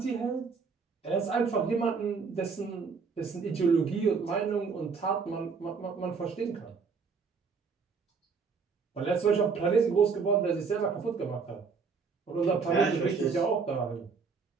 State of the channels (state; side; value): quieter; left; 5.3 dB